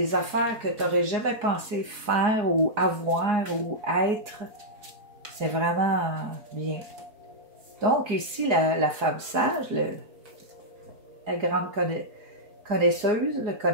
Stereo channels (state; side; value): late; left; 4.8 ms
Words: affaires que tu n'aurais jamais pensé faire ou avoir ou être. C'est vraiment bien. Donc ici, la femme sage, la grande connaisseuse, le